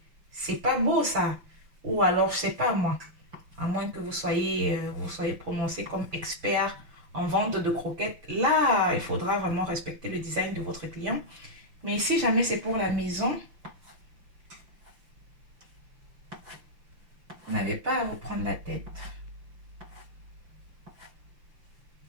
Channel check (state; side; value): late; left; 5.8 ms